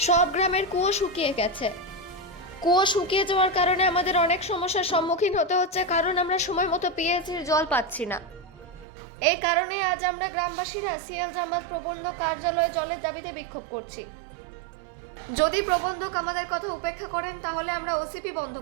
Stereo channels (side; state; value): left; drops out; at 8.8 s